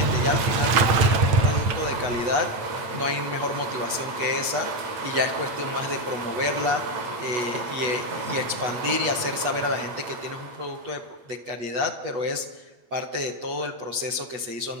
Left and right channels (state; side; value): late; left; 8.2 ms